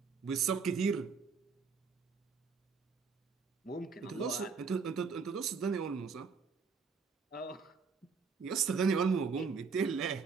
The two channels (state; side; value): quieter; left; 5.4 dB